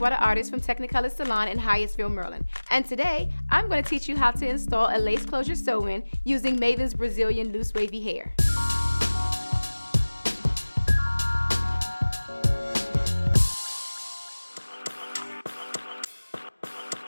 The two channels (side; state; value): both; inverted; correlation -1.00